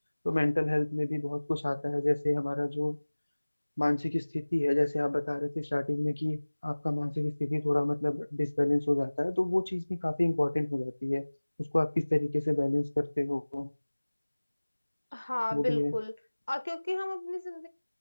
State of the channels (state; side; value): inverted; both; correlation -1.00